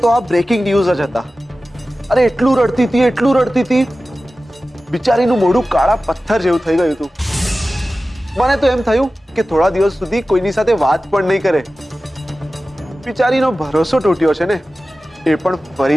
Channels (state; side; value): normal; both; correlation 0.95